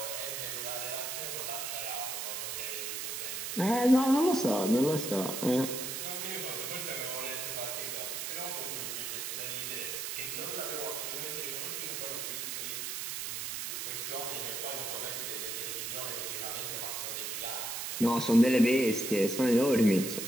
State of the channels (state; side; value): noise; right; hiss, 4 dB below the sound